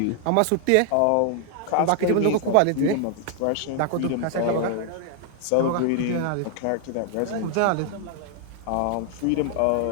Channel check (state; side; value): different; both; correlation 0.00